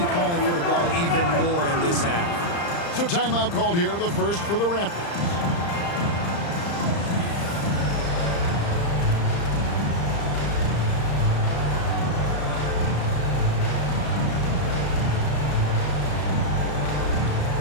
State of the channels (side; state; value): right; late; 35 ms